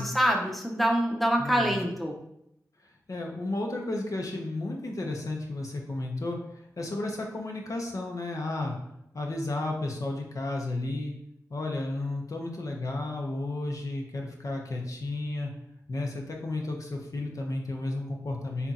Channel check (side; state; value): both; normal; correlation 0.88